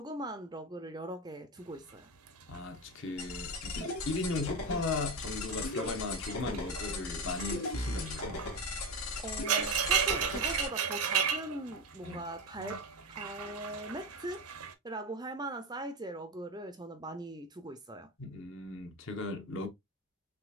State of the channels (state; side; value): normal; both; correlation 0.19